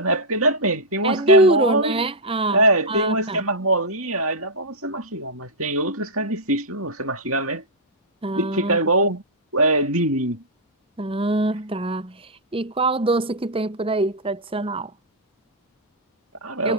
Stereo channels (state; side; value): normal; both; correlation -0.09